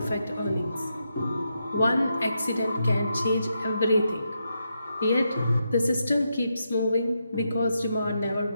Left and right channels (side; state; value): both; inverted; correlation -0.84